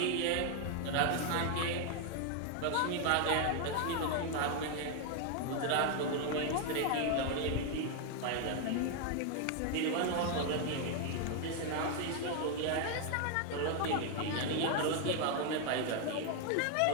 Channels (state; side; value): different; both; correlation 0.01